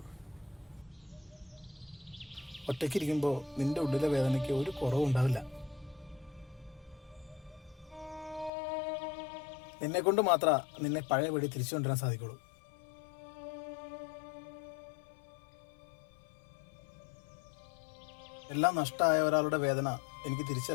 ഒറ്റയ്ക്കിരിക്കുമ്പോൾ നിന്റെ ഉള്ളിലെ വേദനയ്ക്ക് ഒരു കുറവും ഉണ്ടാവില്ല. നിന്നെ കൊണ്ട് മാത്രമേ നിന്നെ പഴയപടി തിരിച്ചു കൊണ്ടുവരാൻ സാധിക്കുള്ളൂ. എല്ലാം നഷ്ടമായ ഒരാളുടെ വേദന എനിക്ക്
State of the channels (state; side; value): drops out; right; at 8.5 s